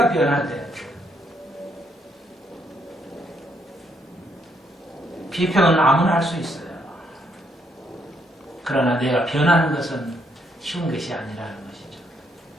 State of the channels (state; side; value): normal; both; correlation 0.74